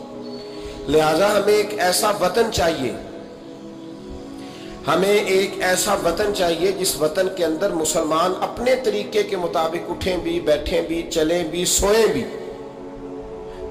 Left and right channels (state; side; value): identical; both; correlation 1.00